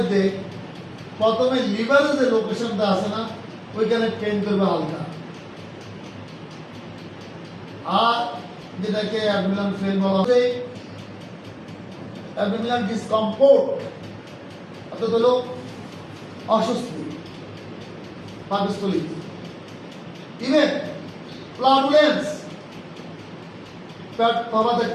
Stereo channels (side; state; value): both; identical; correlation 1.00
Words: প্রথমে লিভারের যে লোকেশনটা আছে না, ওইখানে পেন করবে হালকা, আর যেটাকে অ্যাবডোমিনাল পেন বলা হয়, অ্যাবডোমিনাল ডিসকমফোর্ট অর্থাৎ হলো অস্বস্তি পাকস্থলী, ইভেন ফ্লাটুলেন্স, পেট ফাঁপা